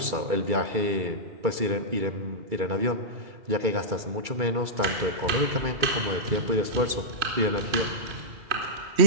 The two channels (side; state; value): left; late; 2.3 ms